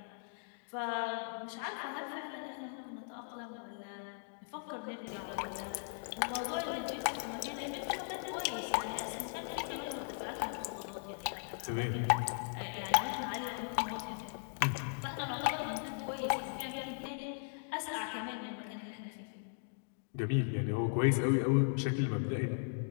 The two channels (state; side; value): silent; right; digital silence